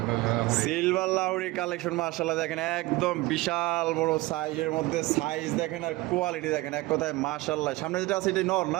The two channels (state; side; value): quieter; left; 20.2 dB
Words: সিলভার লাউড়ি কালেকশন মাশাআল্লাহ দেখেন, একদম বিশাল বড় সাইজের মধ্যে। সাইজ দেখেন আর কোয়ালিটি দেখেন, এক কথায় মাশাআল্লাহ। সামনে যেটা আছে এটা নর